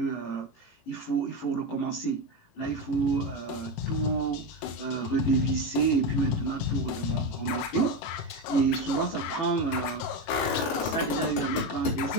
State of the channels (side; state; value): right; late; 18 ms